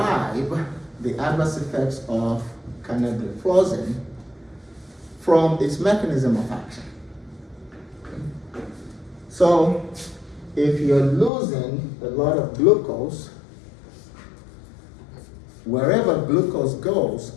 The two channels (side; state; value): right; drops out; at 11.3 s